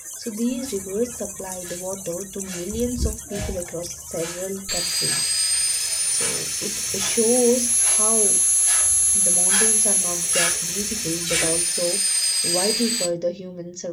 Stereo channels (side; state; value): both; identical; correlation 1.00